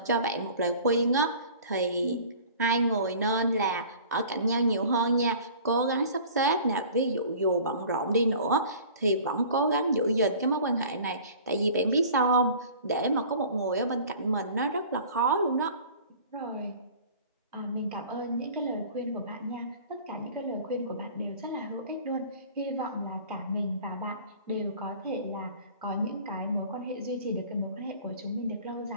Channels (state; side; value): inverted; both; correlation -0.45